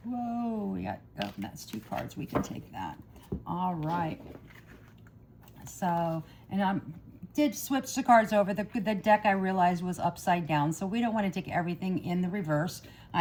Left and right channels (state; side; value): identical; both; correlation 1.00